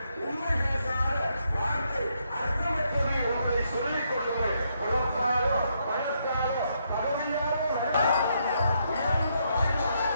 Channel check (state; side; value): inverted; both; correlation -0.77